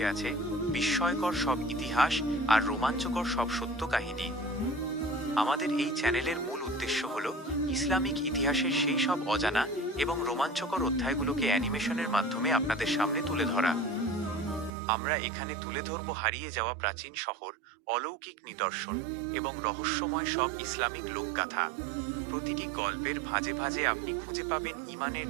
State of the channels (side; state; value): left; drops out; at 14.7 s